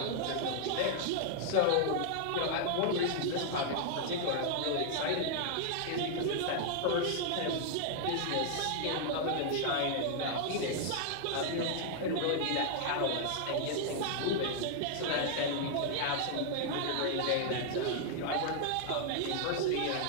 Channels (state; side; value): different; both; correlation 0.00